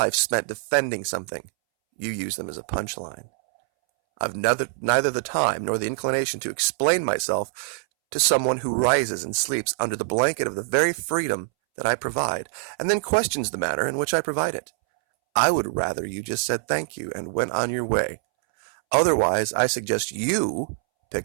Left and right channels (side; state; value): left; silent; 62 dB below the other